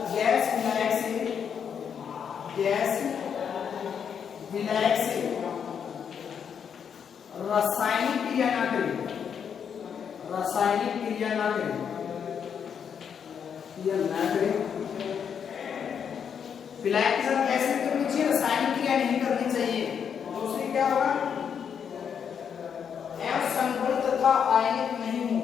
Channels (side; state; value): right; quieter; 7.5 dB